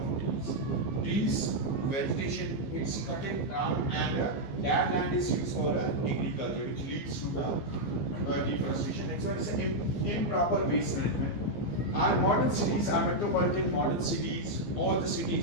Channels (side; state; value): right; late; 15 ms